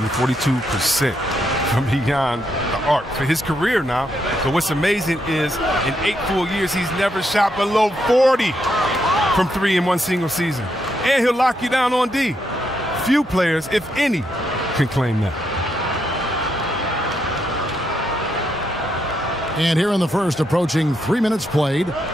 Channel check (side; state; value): both; normal; correlation 0.79